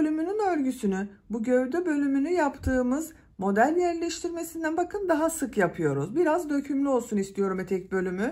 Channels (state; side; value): identical; both; correlation 1.00